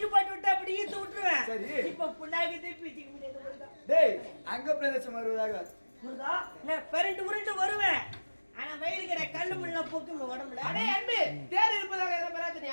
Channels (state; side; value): inverted; both; correlation -1.00